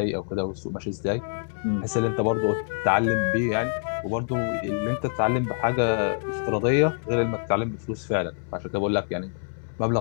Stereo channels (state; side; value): silent; right; 61 dB below the other